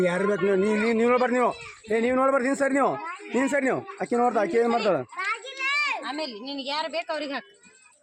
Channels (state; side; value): identical; both; correlation 1.00